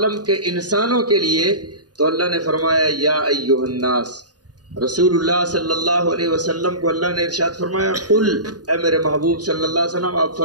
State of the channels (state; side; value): late; left; 0.69 ms